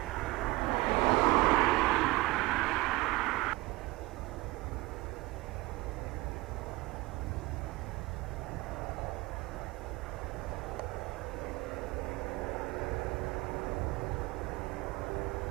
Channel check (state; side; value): quieter; left; 21.4 dB